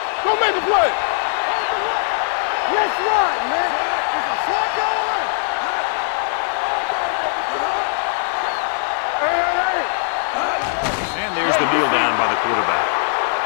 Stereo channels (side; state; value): right; silent; digital silence